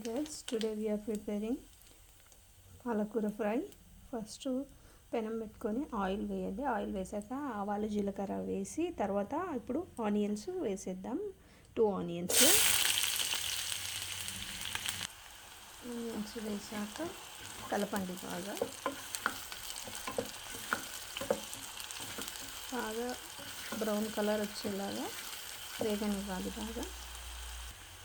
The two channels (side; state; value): both; identical; correlation 1.00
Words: today we are preparing పాలకూర fry. First పెనం పెట్టుకొని ఆయిల్ వేయండి. ఆయిల్ వేసాక ఆవాలు జీలకర్ర వేసి తర్వాత ఇప్పుడు ఆనియన్స్ వేసేద్దాం. 2 ఆనియన్స్ వేసాక కలపండి. బాగా బ్రౌన్ కలర్ వచ్చేలాగా వేగనివ్వాలి. బాగా